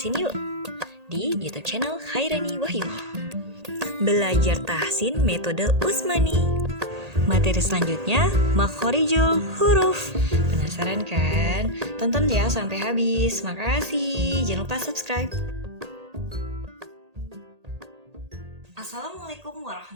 yuk di YouTube channel Khairani Wahyuni. Belajar tahsin metode Usmani. Materi selanjutnya makhorijul huruf. Penasaran kan? Tonton ya sampai habis. Makasih. Jangan lupa subscribe. Assalamualaikum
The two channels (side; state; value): left; late; 1.8 ms